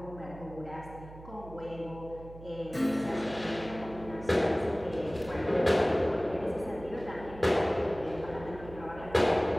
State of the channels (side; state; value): right; noise; hum, 16 dB below the sound